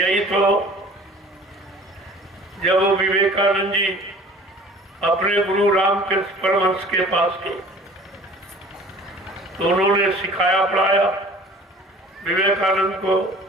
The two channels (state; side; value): normal; both; correlation 0.47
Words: तो जब वो विवेकानंद जी अपने गुरु रामकृष्ण परमहंस के पास गए तो उन्होंने सिखाया पढ़ाया, विवेकानंद को